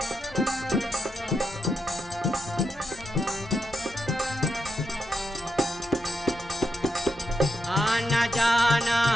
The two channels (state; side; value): normal; both; correlation 0.84